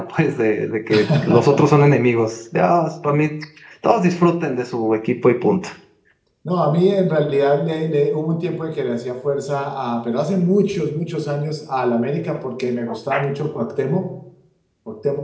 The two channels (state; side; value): identical; both; correlation 1.00